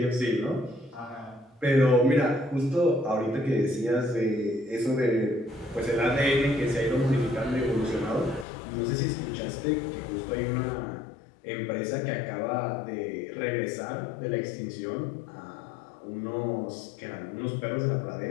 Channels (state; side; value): drops out; right; at 8.5 s